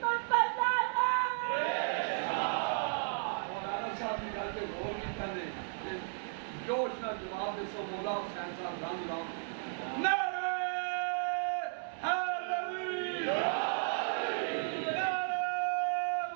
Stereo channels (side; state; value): left; silent; digital silence